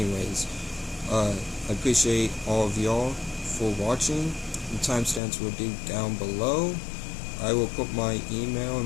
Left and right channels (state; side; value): drops out; right; at 5.2 s